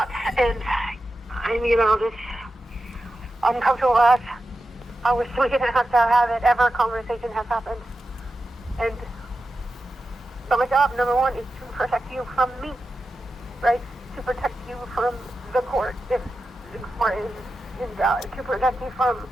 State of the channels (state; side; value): normal; both; correlation 0.91